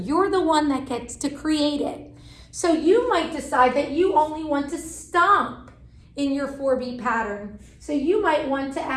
the one that gets to create it. So you might decide that you only want to stomp in your 4-beat pattern. So you might want to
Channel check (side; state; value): both; identical; correlation 1.00